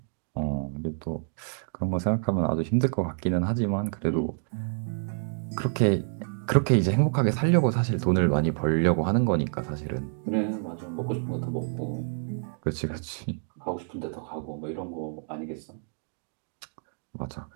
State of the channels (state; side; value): silent; left; 59 dB below the other